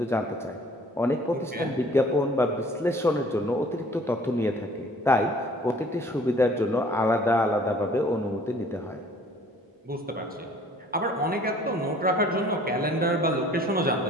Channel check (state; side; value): normal; both; correlation 0.54